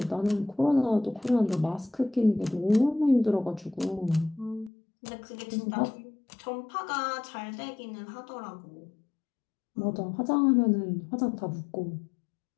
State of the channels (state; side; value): drops out; right; at 4.7 s